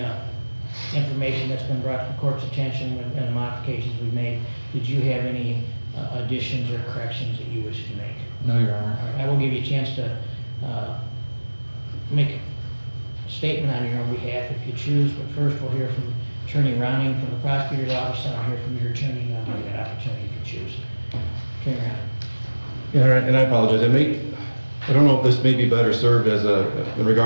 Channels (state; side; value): inverted; both; correlation -1.00